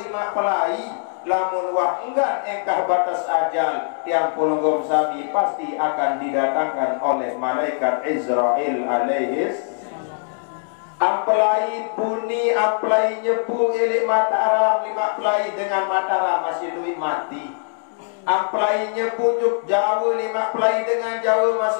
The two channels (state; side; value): silent; right; digital silence